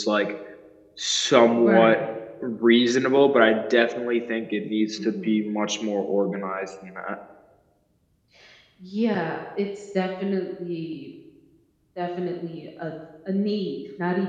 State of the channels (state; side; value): identical; both; correlation 1.00